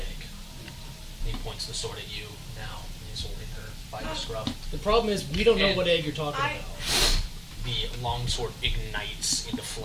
And he points the sword at you now. And he's holding her by the scruff. The problem is, we don't know And what egg you're talking I- about. The longsword ignites into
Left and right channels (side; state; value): both; identical; correlation 1.00